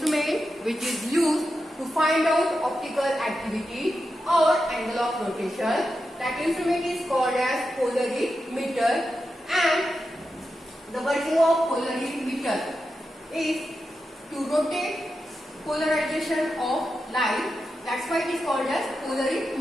which is used to find out optical activity or angle of rotation, that instrument is called as polarimeter. And the working of polarimeter is to rotate polarization of light. That's why it is called as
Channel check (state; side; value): normal; both; correlation 0.89